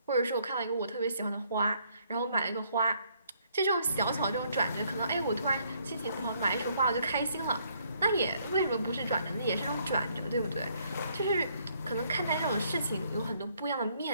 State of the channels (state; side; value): inverted; both; correlation -0.68